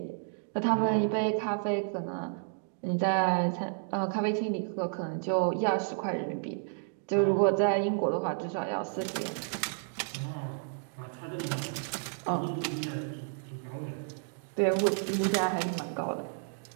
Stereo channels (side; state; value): left; silent; digital silence